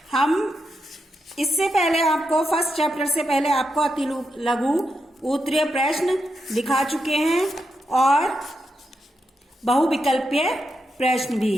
हम इससे पहले आपको फर्स्ट चैप्टर से पहले आपको अति लघु उत्तरीय प्रश्न दिखा चुके हैं और बहुविकल्पीय प्रश्न भी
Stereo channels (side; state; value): both; normal; correlation 0.85